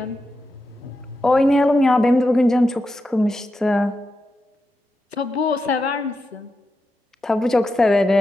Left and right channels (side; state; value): both; normal; correlation 0.88